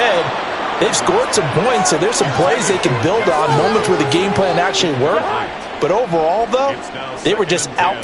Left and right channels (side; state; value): both; identical; correlation 1.00